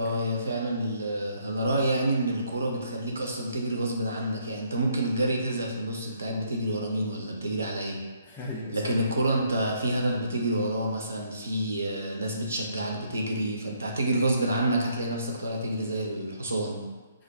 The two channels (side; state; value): both; inverted; correlation -0.68